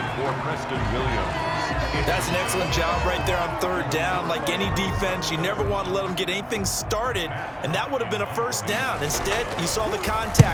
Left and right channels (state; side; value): identical; both; correlation 1.00